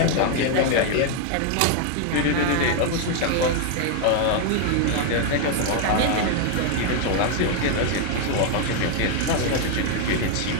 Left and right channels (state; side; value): different; both; correlation 0.01